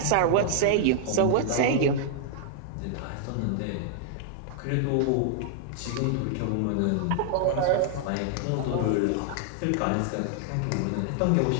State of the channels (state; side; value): different; both; correlation -0.01